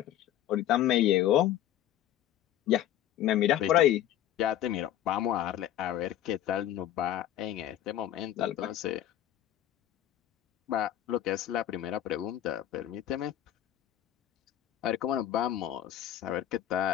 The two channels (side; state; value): right; quieter; 11.9 dB